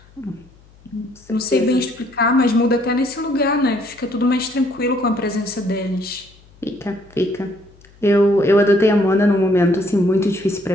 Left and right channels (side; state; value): left; noise; hum, 27 dB below the sound